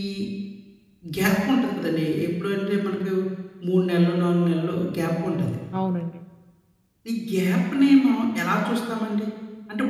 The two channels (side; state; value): both; identical; correlation 1.00